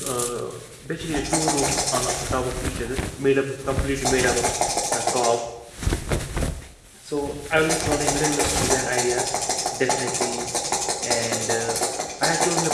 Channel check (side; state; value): both; identical; correlation 1.00